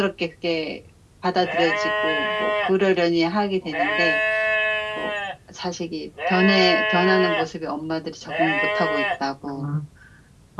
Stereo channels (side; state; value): both; identical; correlation 1.00